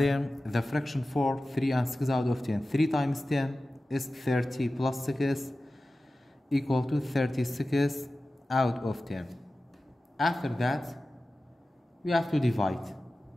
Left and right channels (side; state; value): both; normal; correlation 0.95